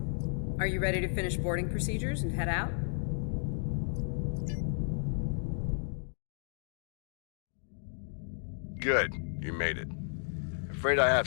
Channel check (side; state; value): right; silent; digital silence